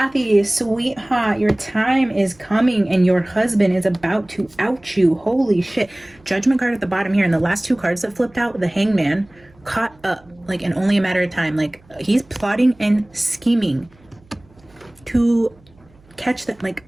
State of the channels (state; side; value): noise; right; hum, 29 dB below the sound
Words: sweetheart, your time is coming and your husband is about to out you. Holy shit. Judgment card at the bottom here, and the last two cards that flipped out, the Hangman, caught up, like in only a matter of time. Like, he's plotting and scheming to catch that. Like,